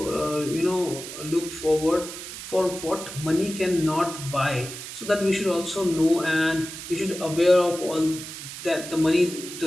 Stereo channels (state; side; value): noise; right; hiss, 10 dB below the sound